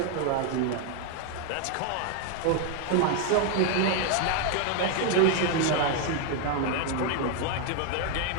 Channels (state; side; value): different; both; correlation 0.01